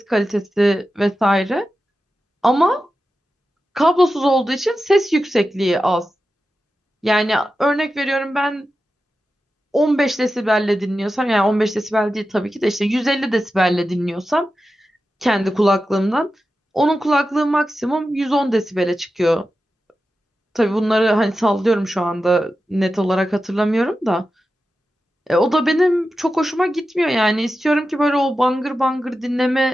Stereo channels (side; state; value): both; normal; correlation 0.92